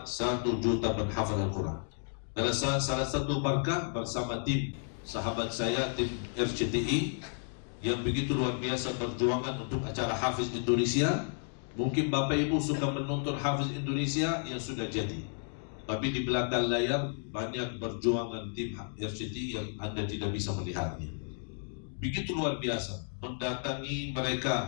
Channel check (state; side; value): silent; right; 56 dB below the other